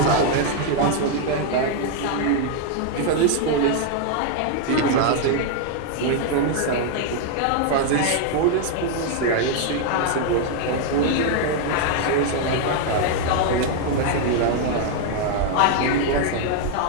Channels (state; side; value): different; both; correlation 0.00